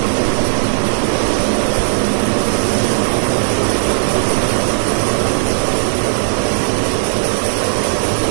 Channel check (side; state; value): left; silent; digital silence